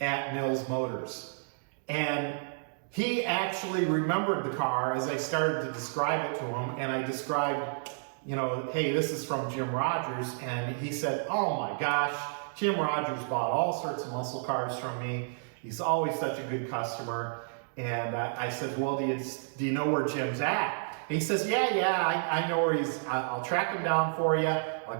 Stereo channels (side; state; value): left; silent; digital silence